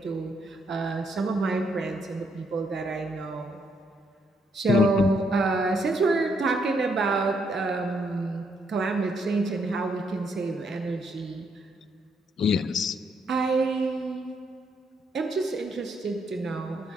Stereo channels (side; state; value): both; normal; correlation 0.74